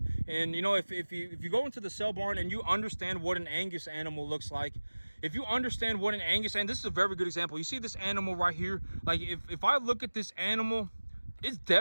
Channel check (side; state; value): both; inverted; correlation -1.00